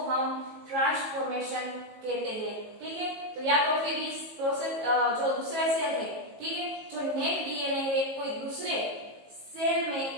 हम ट्रांसफॉर्मेशन कहते हैं, ठीक है। तो या तो फिर इस प्रोसेस जो दूसरा सेल है, ठीक है, जो नेक डीएनए है कोई दूसरे सेल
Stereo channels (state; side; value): late; left; 18 ms